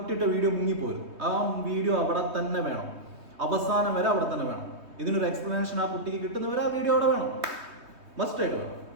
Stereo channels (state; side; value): late; left; 3.2 ms